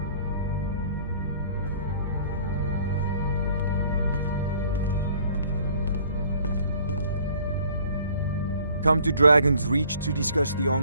Come to Dragon's Reach to discuss the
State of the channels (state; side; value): inverted; both; correlation -0.55